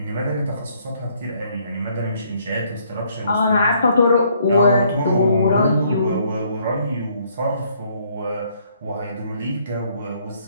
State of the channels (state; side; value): inverted; both; correlation -0.66